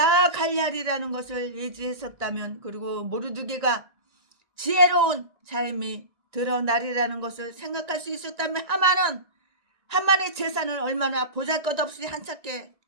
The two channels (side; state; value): left; late; 1.9 ms